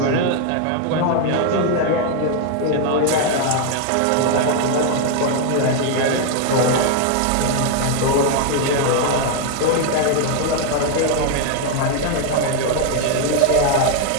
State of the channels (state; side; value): different; both; correlation 0.00